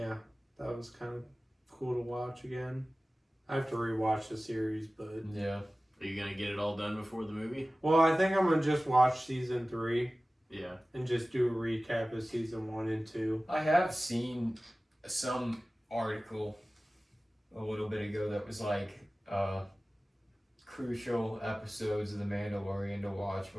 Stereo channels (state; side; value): normal; both; correlation 0.97